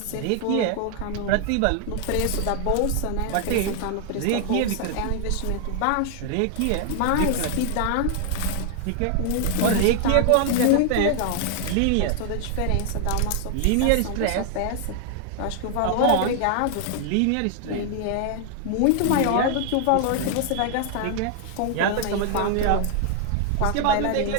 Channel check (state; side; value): different; both; correlation 0.00